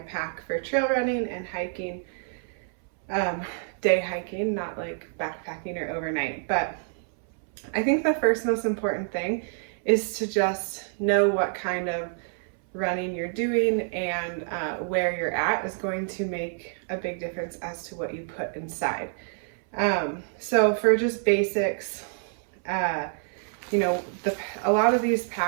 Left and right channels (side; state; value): left; silent; 60 dB below the other